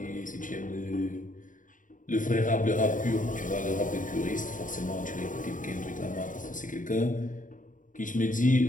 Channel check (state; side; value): late; right; 0.38 ms